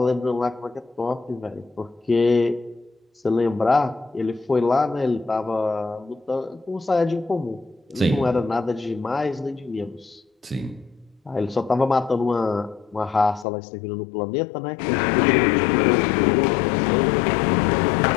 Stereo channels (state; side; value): drops out; right; at 13.5 s